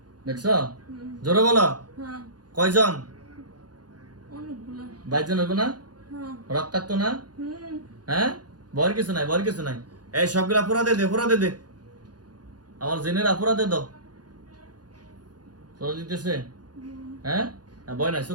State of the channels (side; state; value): left; late; 0.69 ms